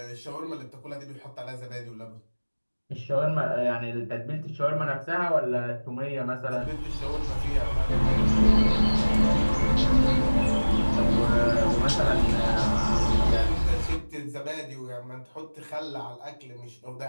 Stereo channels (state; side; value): inverted; both; correlation -1.00